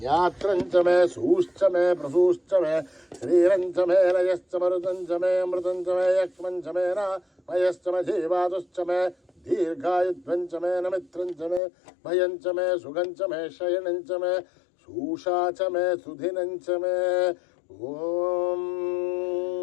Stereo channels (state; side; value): drops out; right; at 11.6 s